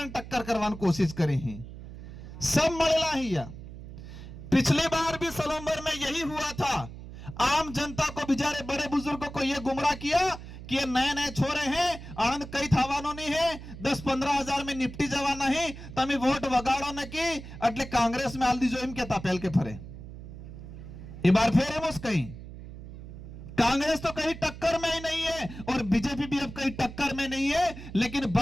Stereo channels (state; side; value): noise; right; hum, 13 dB below the sound